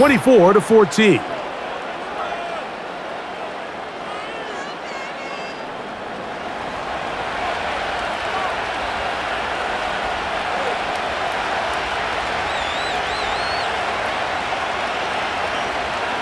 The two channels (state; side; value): identical; both; correlation 1.00